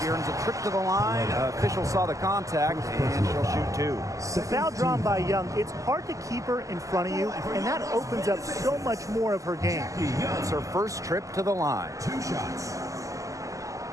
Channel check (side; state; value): left; late; 0.16 ms